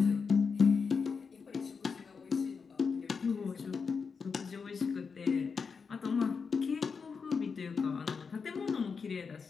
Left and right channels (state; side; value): quieter; right; 5.5 dB